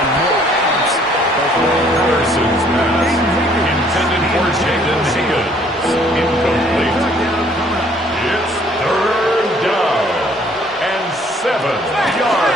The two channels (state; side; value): normal; both; correlation 0.61